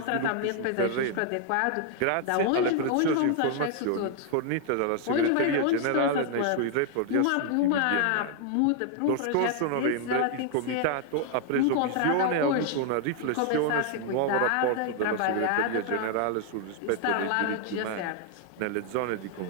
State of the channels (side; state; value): both; different; correlation 0.00